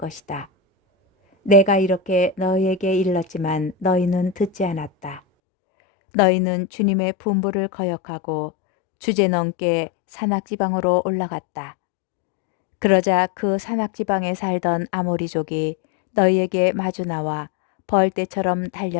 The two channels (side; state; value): right; drops out; at 5.2 s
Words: 내가 이렇게 너희에게 일렀지만 너희는 듣지 않았다. 너희는 주님의 분부를 거역하고 주제넘게 산악지방으로 올라갔다. 그러자 그 산악지방에 살던 아모리족이 너희에게 마주 나와 벌떼처럼